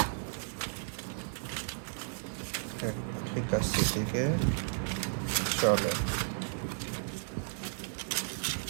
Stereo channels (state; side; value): silent; left; digital silence